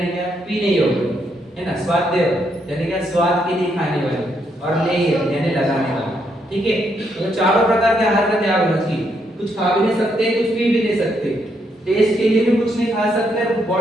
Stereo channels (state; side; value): normal; both; correlation 0.76